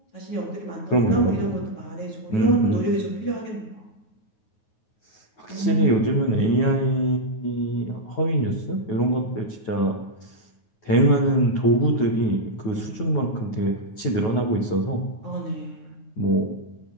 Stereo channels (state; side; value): late; right; 9.4 ms